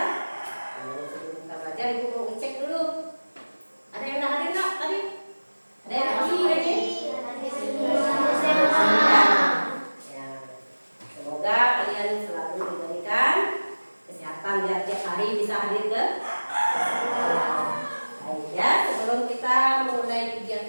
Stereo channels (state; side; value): inverted; both; correlation -1.00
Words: Lalu sebelum kita belajar, ibu mau ngecek dulu. Ada yang udah hadir nggak tadi? Ada yang hadir? Ya. Semoga kalian selalu diberikan kesehatan biar tiap hari bisa hadir ke sekolah. Baik ya, sebelum kita mulai